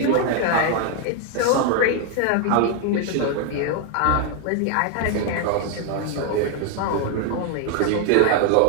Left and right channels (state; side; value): different; both; correlation 0.01